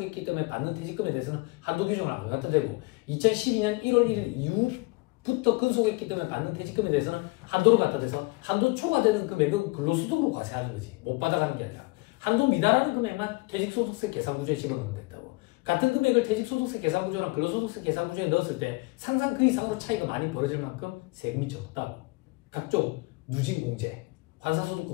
때문에 받는 퇴직금에 대해서는 한도 규정을 안 갖다 대고 2012년 1월 1일 이후부터 근속했기 때문에 받는 퇴직금에 대해서는 한도를 갖다 대서 한도 초과되는 금액은 근로소득으로 과세하는 거지. 못 받아가는 게 아니라. 한도 미달하는 금액만 퇴직소득세 계산구조에 집어넣으면 된다고. 같은 금액을 퇴직소득세 계산구조랑 근로소득세 계산구조에 넣었을 때 상상 그 이상으로 차이가 많이 벌어질 만큼 세금이 적다고. 각종 누진공제,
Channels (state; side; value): quieter; right; 25.0 dB